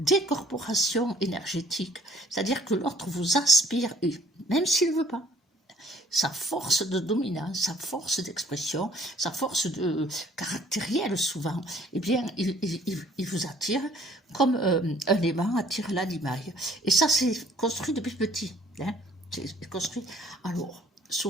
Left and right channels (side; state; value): both; normal; correlation 0.59